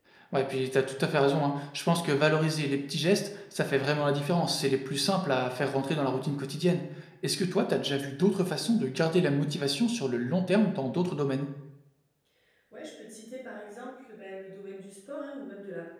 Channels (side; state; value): both; identical; correlation 1.00